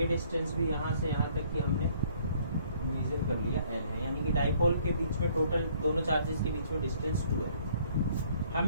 डिस्टेंस भी यहां से यहां तक की हमने मेजर कर लिया, L है। यानी कि डाइपोल के बीच में टोटल दोनों चार्जेस के बीच में डिस्टेंस 2 है।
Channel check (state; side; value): inverted; both; correlation -0.62